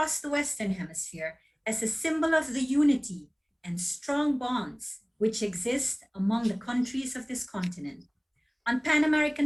the Western Hemisphere as a symbol of the unity and strong bonds which exist among the countries of this continent. On Pan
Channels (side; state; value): both; identical; correlation 1.00